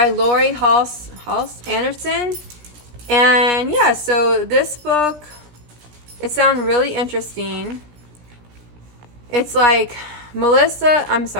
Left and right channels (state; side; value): late; left; 17 ms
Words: Lori Halse Anderson. And yeah, so this book, it sounds really interesting. It's like